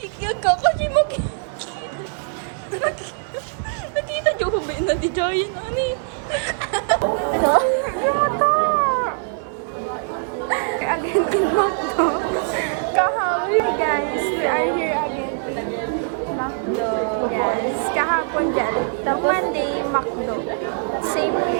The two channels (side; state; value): left; silent; 64 dB below the other